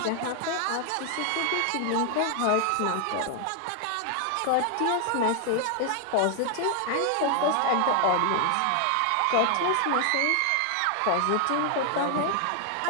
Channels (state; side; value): different; both; correlation 0.00